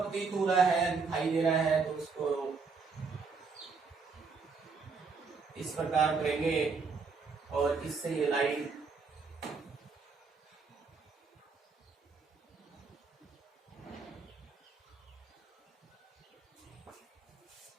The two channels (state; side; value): quieter; left; 4.8 dB